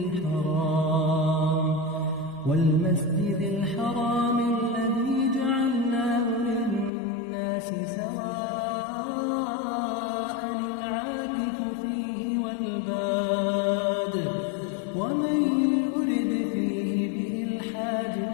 والمسجد الحرام الذي جعلناه للناس سواء العاكف فيه والباد ومن يرد فيه بإلحاد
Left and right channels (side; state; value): right; drops out; at 6.9 s